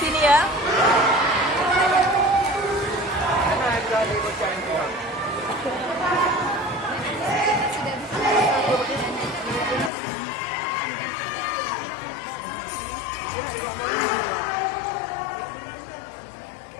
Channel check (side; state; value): right; drops out; at 9.9 s